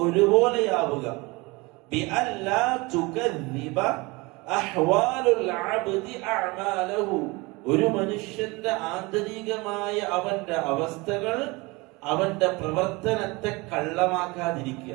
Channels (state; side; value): quieter; left; 24.9 dB